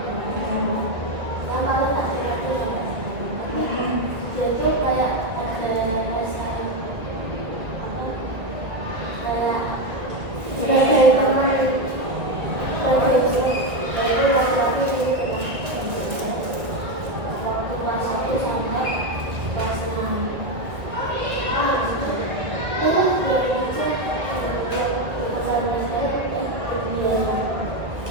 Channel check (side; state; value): left; late; 1.7 ms